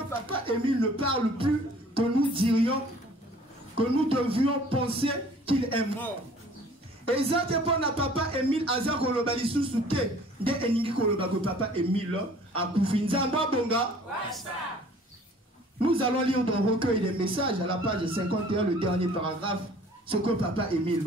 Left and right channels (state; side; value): normal; both; correlation 0.52